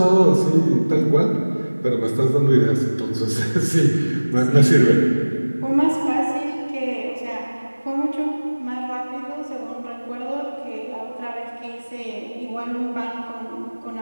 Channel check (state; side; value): inverted; both; correlation -1.00